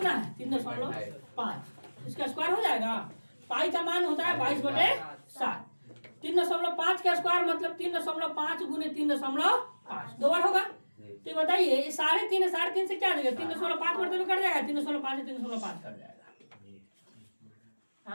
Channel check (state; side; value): inverted; both; correlation -1.00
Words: है, 3.5, इसका स्क्वायर हो जाएगा। पाई का मान होता है 22/7, 3.5 का स्क्वायर मतलब 3.5 गुने 3.5, 2 बार होगा। तो बताइए 3.5 से क्या देगा, 3.5 मरतबे कट जाएगा, 3.5 से 3.5 कट जाएगा।